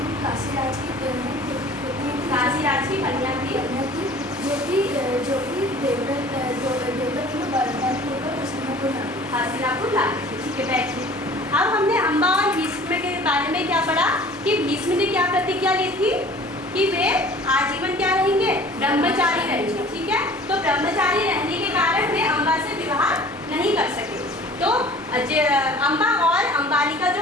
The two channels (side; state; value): both; normal; correlation 0.47